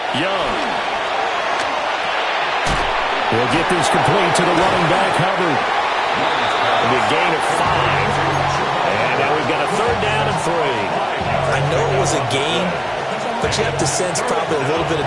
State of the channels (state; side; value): identical; both; correlation 1.00